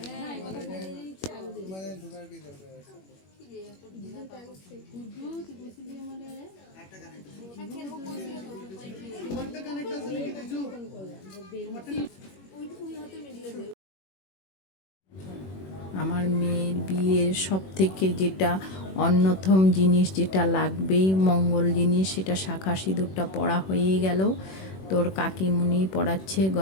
হ্যাঁ, এই কথা বলে দিচ্ছি আমাদের মানে ঢোকার কি দরকার আছে? আমার মেয়ের বিয়ের সব থেকে যেটা অন্যতম জিনিস, যেটা লাগবেই মঙ্গল জিনিস, সেটা শাঁখা সিঁদুরটা পরা হয়ে গেল। তোর কাকিমুনি পরাচ্ছে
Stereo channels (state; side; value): late; right; 21 ms